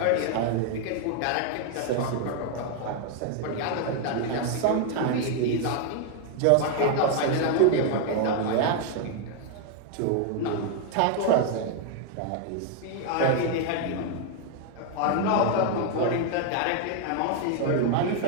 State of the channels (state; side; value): different; both; correlation 0.00